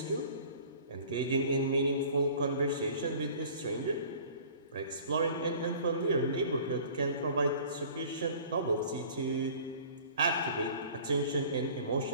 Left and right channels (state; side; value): inverted; both; correlation -0.47